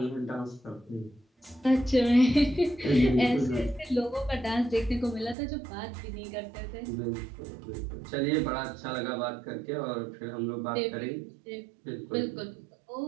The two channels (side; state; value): left; drops out; at 5.4 s